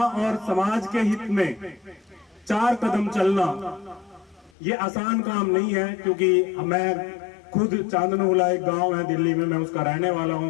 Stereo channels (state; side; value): drops out; right; at 4.5 s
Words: समाज के हित में 4 कदम चलना ये आसान काम नहीं है। क्योंकि मैं खुद चांदनोला एक गांव है दिल्ली में, मैं उसका रहने वाला